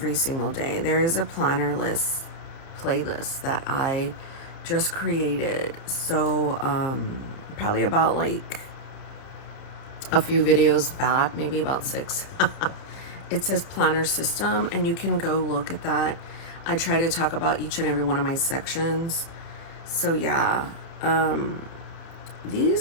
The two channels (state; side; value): late; right; 30 ms